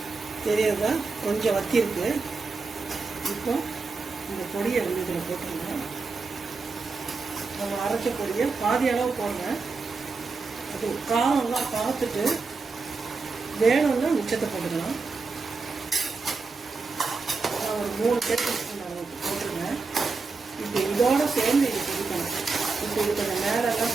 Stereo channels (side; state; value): left; quieter; 4.3 dB